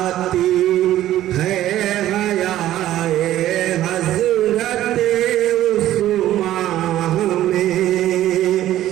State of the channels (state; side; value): quieter; left; 13.4 dB